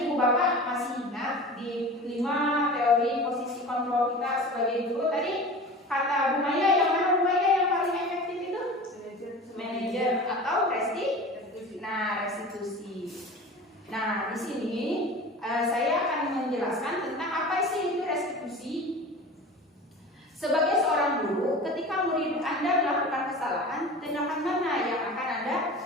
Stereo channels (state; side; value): normal; both; correlation 0.36